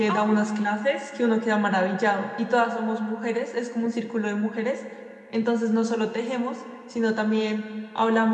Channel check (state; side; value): identical; both; correlation 1.00